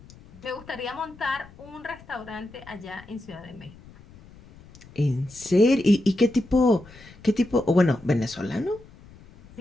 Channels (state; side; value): noise; left; rumble, 22 dB below the sound